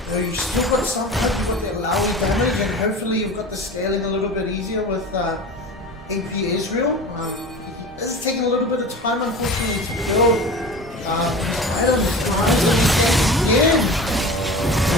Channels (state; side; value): normal; both; correlation 0.34